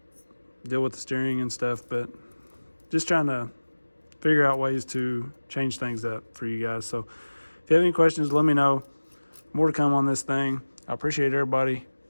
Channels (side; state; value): both; inverted; correlation -1.00